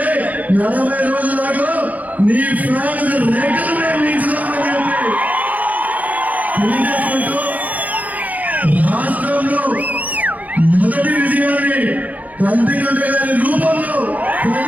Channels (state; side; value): late; left; 0.077 ms